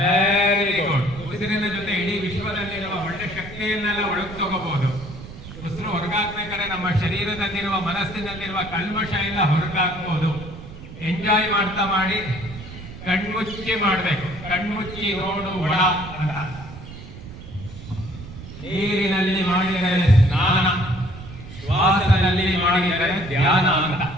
good. ಉಸಿರಿನ ಜೊತೆ ಇಡೀ ವಿಶ್ವದಲ್ಲಿರುವ ಒಳ್ಳೆ ಶಕ್ತಿಯನ್ನೆಲ್ಲ ಒಳಗೆ ತಗೋಬಹುದು. ಉಸಿರು ಹೊರಗಾಕ್ಬೇಕಾದ್ರೆ ನಮ್ಮ ಶರೀರದಲ್ಲಿರುವ ಮನಸ್ಸಿನಲ್ಲಿರುವ ಕಲ್ಮಶ ಎಲ್ಲ ಹೊರಗಾಕ್ಬಹುದು. ಎಂಜಾಯ್ ಮಾಡ್ತಾ ಮಾಡಿ. ಕಣ್ಮುಚ್ಚಿ ಮಾಡಬೇಕು. ಕಣ್ಮುಚ್ಚಿ ನೋಡು ಒಳ ಅಂತ. ನೀರಿನಲ್ಲಿ ಮಾಡಿದರೆ ಸ್ನಾನ, ಶ್ವಾಸದಲ್ಲಿ ಮಾಡಿದರೆ ಧ್ಯಾನ ಅಂತ.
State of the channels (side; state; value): right; noise; rumble, 13 dB below the sound